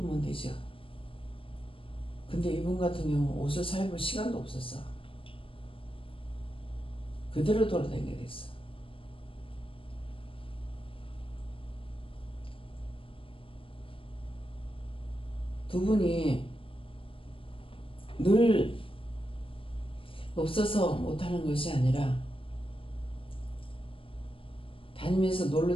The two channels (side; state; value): right; late; 0.26 ms